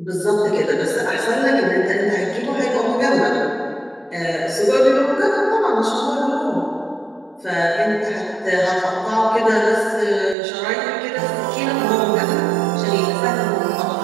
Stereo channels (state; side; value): drops out; left; at 10.4 s